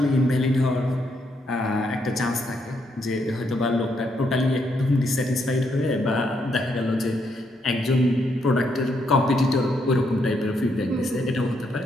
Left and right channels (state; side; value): normal; both; correlation 0.76